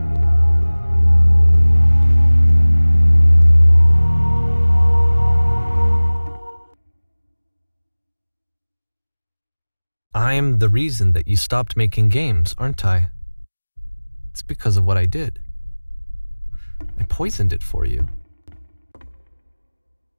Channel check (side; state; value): both; inverted; correlation -1.00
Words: I'm the reason that you stopped making games, aren't I? It's because of what I did. I poisoned it for you.